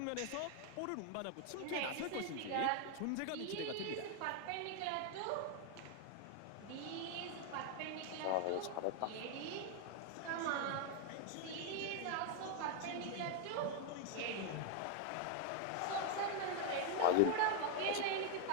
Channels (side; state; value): both; different; correlation 0.00